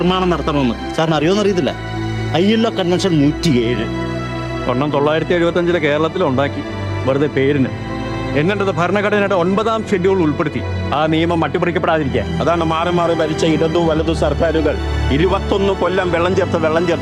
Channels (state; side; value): identical; both; correlation 1.00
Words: നടത്തണമെന്ന്. സാറിന് അറിയുമെന്നറിയത്തില്ല. ILO കൺവെൻഷൻ 107 1975 കേരളത്തിലുണ്ടാക്കി, വെറുതെ പേരിന്. എന്നിട്ടത് ഭരണഘടനയുടെ 9ാം ഷെഡ്യൂൾ ഉൾപ്പെടുത്തി ആ നിയമം അട്ടിമറിക്കപ്പെടാതിരിക്കാൻ. അതാണ് മാറി മാറി ഭരിച്ച ഇടതു വലതു സർക്കാരുകൾ 21 കൊല്ലം വെള്ളം